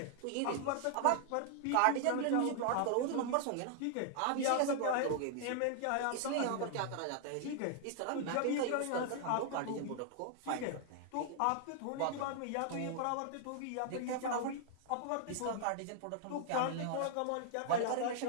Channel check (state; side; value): different; both; correlation -0.01